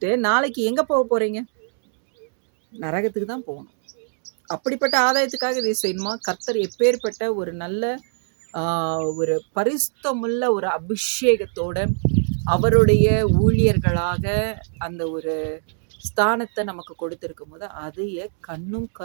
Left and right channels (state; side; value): silent; left; 63 dB below the other